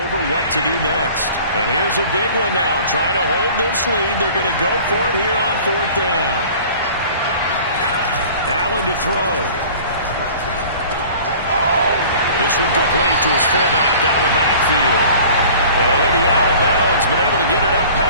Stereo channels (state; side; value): inverted; both; correlation -0.46